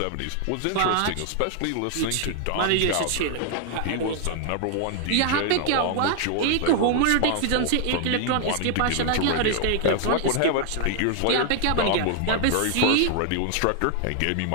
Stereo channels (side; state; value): both; different; correlation 0.00